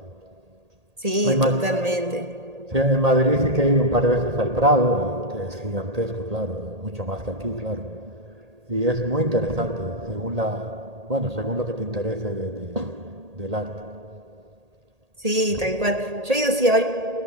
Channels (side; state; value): left; late; 1.8 ms